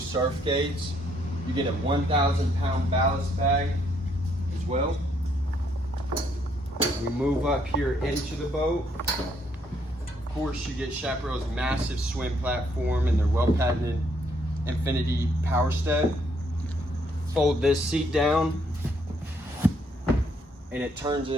gates. You get a 1,000 pound ballast bag as well. We move up here into the boat. Of course, you get Chaparral's massive swim platform and their well-patented Infinity power step. Fold this seat down and it turns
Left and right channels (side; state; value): both; normal; correlation 0.70